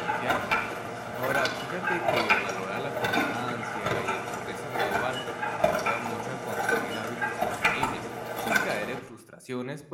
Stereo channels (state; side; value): identical; both; correlation 1.00